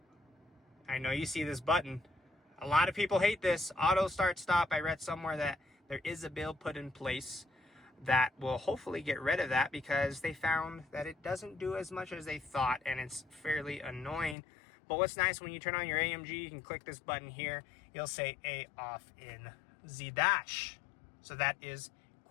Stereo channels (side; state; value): right; drops out; at 14.4 s